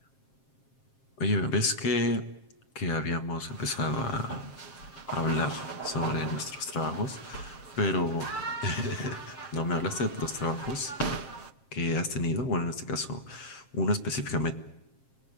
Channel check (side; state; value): right; late; 7.5 ms